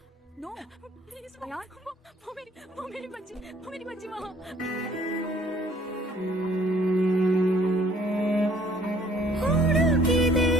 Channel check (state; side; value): normal; both; correlation 0.58